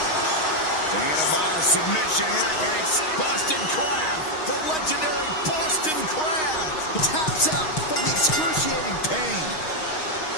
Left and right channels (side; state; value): right; late; 6.4 ms